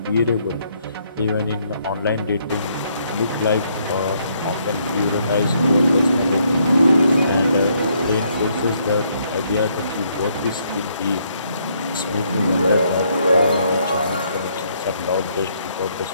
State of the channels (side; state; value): both; inverted; correlation -0.71